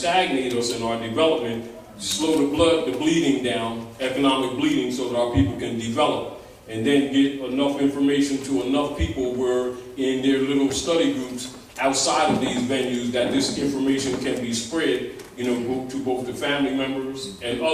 us in our development, slow the bleeding down, economic bleeding, so that our people can develop. And then get enough information to enough people where in their little study groups outside of these venues that this information can be spread, you know, to both the family members and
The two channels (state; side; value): identical; both; correlation 1.00